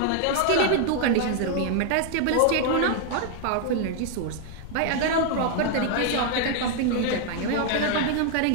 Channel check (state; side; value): different; both; correlation 0.00